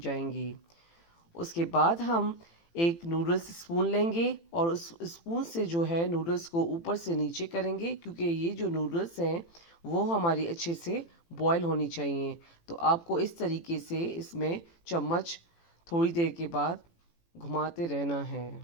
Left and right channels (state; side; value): late; right; 18 ms